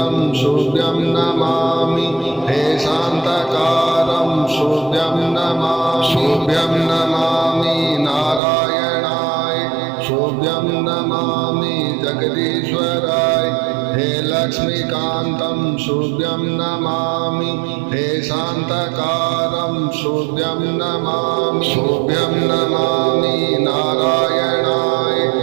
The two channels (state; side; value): drops out; left; at 8.4 s